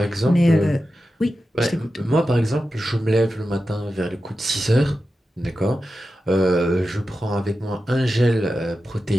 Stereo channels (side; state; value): both; normal; correlation 0.92